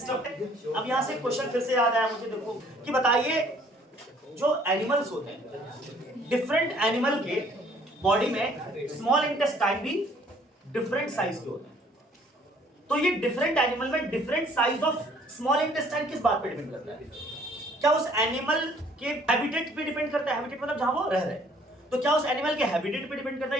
अब यहां से क्वेश्चन फिर से याद आया मुझे, देखो कि बताइए जो एनिमल्स होते हैं, डिफरेंट एनिमल के बॉडी में स्मॉल इंटेस्टाइन भी डिफरेंट साइज के होते हैं, तो ये डिफरेंट एनिमल में different size of small intestine किस बात पे डिपेंड करता है? क्या उस एनिमल के हैबिटेट पे डिपेंड करता है? हैबिटेट मतलब जहां वो रह रहे हैं, तो क्या उस एनिमल के हैबिटेट पे डिपेंड करता है?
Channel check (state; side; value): normal; both; correlation 0.59